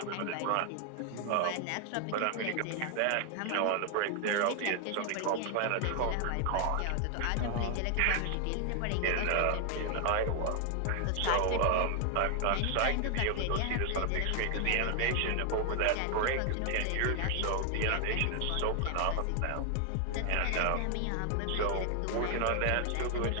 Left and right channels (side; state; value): both; different; correlation 0.00